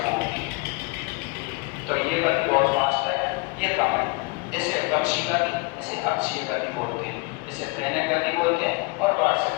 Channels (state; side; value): quieter; right; 27.3 dB